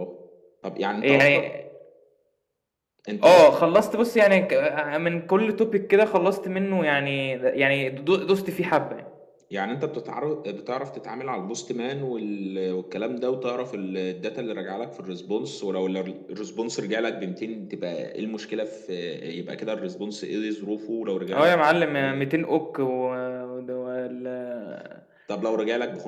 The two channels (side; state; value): both; identical; correlation 1.00